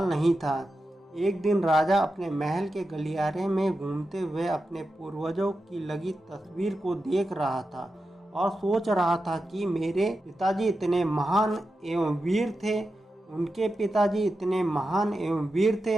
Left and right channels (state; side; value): normal; both; correlation 0.90